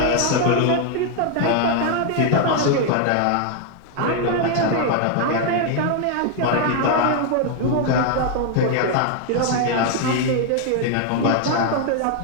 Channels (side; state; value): both; different; correlation 0.00